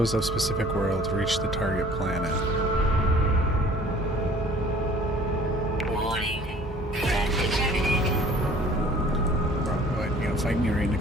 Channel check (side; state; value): both; normal; correlation 0.51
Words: of specific world to reach the target planet. Warning. Threat detected. Bro, what, you gonna fight me right